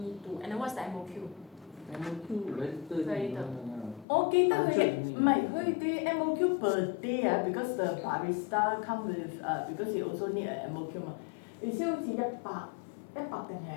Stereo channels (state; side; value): drops out; right; at 4.0 s